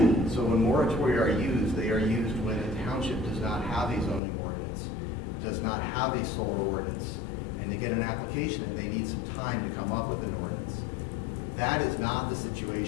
So when moratoria are used, they are used when a township does not have a zoning ordinance, does not have a solar ordinance, and they get an application and they need some time to come up with an ordinance. That is not the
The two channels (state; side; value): drops out; right; at 4.2 s